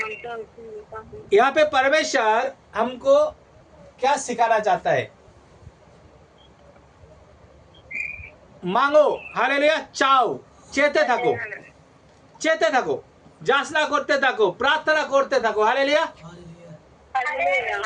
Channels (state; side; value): identical; both; correlation 1.00